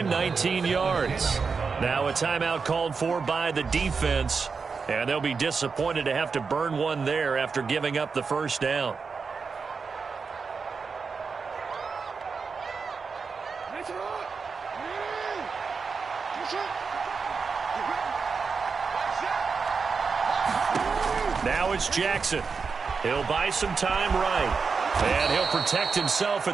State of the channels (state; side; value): quieter; left; 5.1 dB